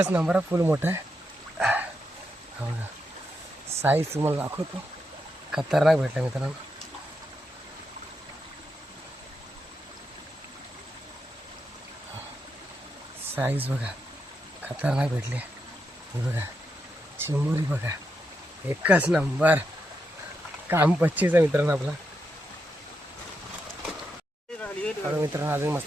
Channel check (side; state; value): both; normal; correlation 0.84